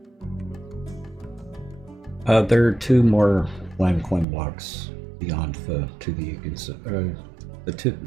There are 2 more land coin blocks beyond the 2 that you can see. The 2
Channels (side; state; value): left; drops out; at 4.2 s